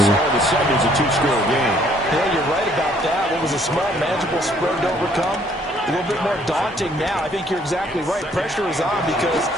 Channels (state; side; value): normal; both; correlation 0.63